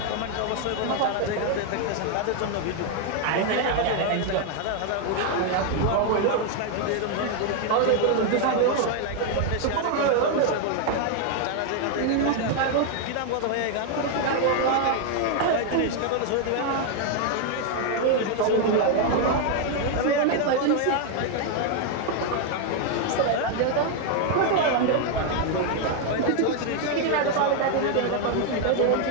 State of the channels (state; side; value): different; both; correlation 0.00